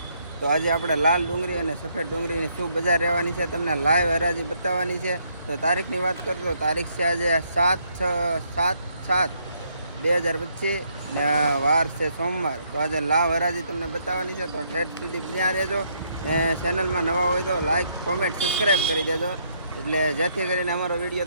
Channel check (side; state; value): both; inverted; correlation -0.72